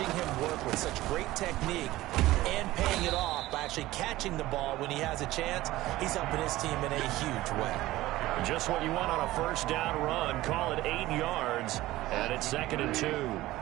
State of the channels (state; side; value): quieter; left; 16.9 dB